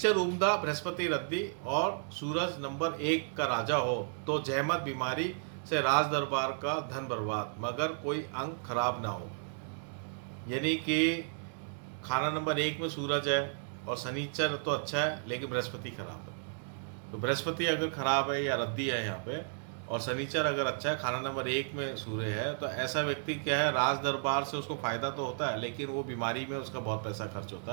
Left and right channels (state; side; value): silent; left; digital silence